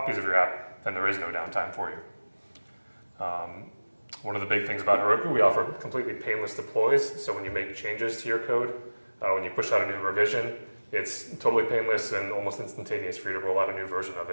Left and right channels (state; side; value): inverted; both; correlation -1.00